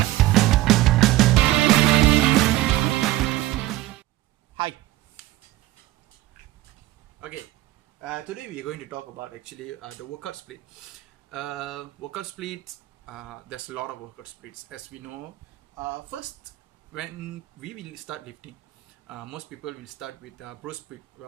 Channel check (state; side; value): quieter; left; 16.4 dB